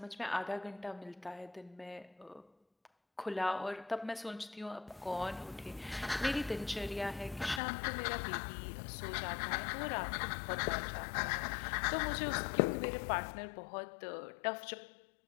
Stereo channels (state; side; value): drops out; right; at 7.6 s